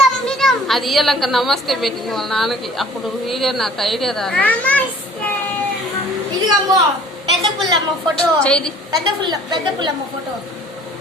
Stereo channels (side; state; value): both; normal; correlation 0.51